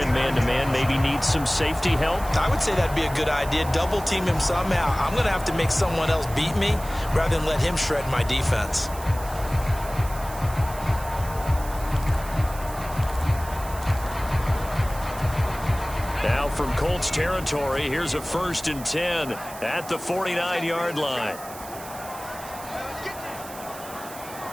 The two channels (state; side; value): noise; right; hiss, 15 dB below the sound